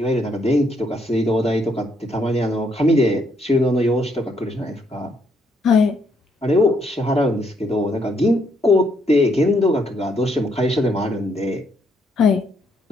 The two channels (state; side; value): normal; both; correlation 0.73